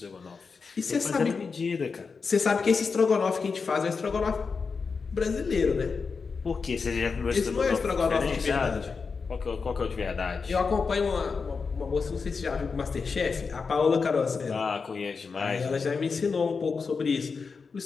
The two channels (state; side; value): quieter; right; 5.0 dB